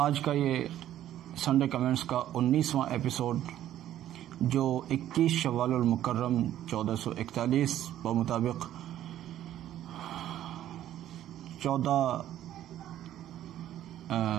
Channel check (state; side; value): quieter; left; 12.2 dB